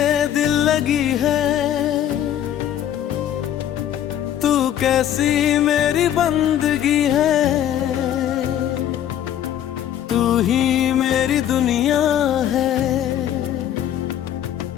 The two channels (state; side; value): quieter; right; 10.9 dB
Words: दिल लगी है, तू कैसी मेरी बंदगी है। तू ही मेरी दुनिया है,